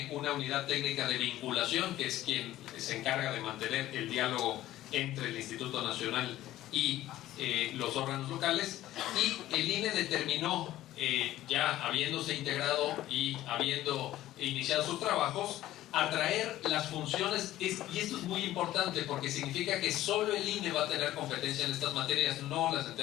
una unidad técnica de vinculación, que es quien se encarga de mantener el diálogo entre el Instituto Nacional y los órganos locales, y el INE determinó, ya habiéndose integrado y habiendo iniciado sus trabajos, atraer las funciones, y esto es muy importante porque significa que solo el INE va a tener competencia en estas materias, no las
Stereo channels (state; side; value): quieter; right; 14.6 dB